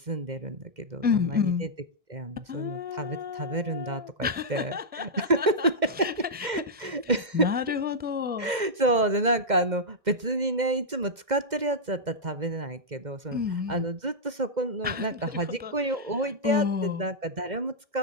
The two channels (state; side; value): late; left; 2.1 ms